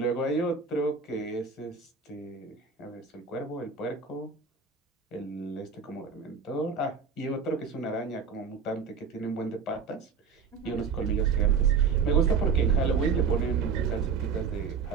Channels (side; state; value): left; quieter; 5.6 dB